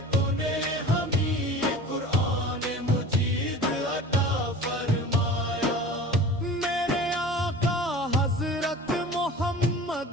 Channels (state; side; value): normal; both; correlation 0.39